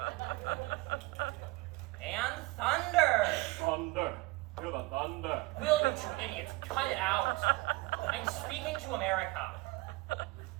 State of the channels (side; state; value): left; quieter; 22.2 dB